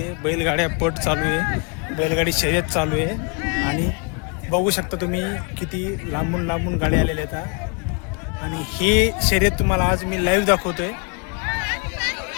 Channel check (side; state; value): right; quieter; 35.4 dB